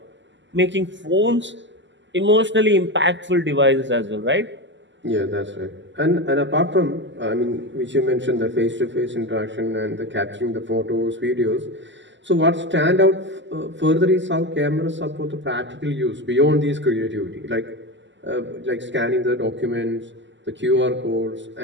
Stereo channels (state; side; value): late; left; 0.54 ms